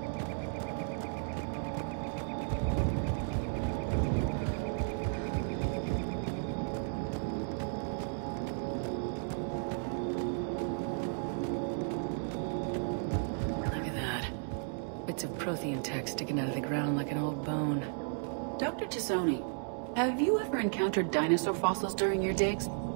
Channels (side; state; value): left; silent; 55 dB below the other